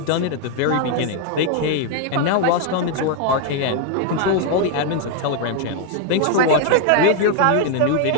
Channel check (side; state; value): both; different; correlation 0.00